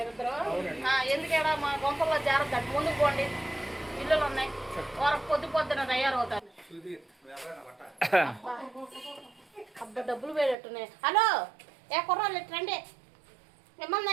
ఎందుకేడా మా గొంపల్లో జాగ్రత్త. ముందుకు పోండి, ఇల్లులు ఉన్నాయి. పొద్దున తయారవుతారు. అబ్బా, డబ్బులు వేడట్టున్నాయి. హలో, ఏ కుర్రాళ్ళు రండి.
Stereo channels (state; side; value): drops out; left; at 10.6 s